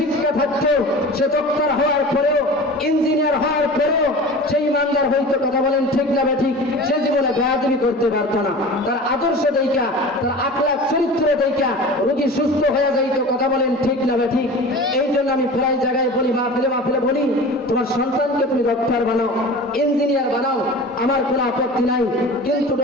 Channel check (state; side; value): normal; both; correlation 0.36